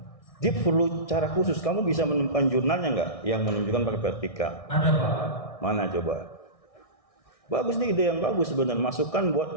Dia perlu cara khusus. Kamu bisa menemukan jurnalnya nggak yang menunjukkan pakai vertikal? Ada Pak. Mana coba? Bagus nih, ide yang bagus sebenarnya. Masukkan buat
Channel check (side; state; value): right; late; 1.6 ms